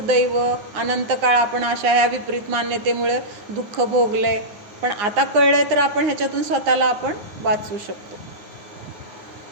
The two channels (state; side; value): late; left; 9.9 ms